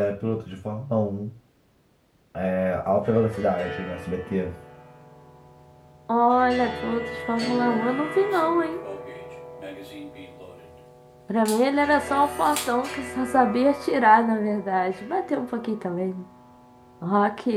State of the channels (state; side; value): identical; both; correlation 1.00